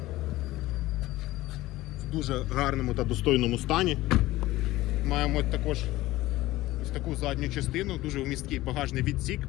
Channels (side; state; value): right; quieter; 17.3 dB